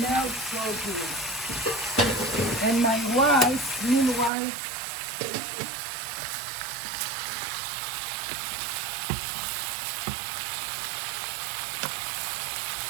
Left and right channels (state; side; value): drops out; left; at 4.3 s